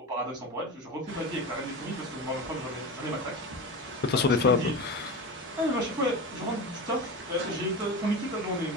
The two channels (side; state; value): both; normal; correlation 0.26